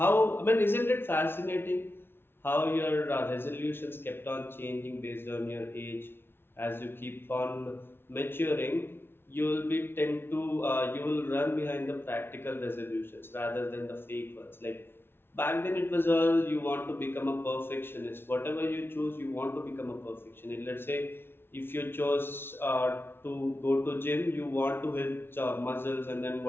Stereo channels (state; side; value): late; right; 0.11 ms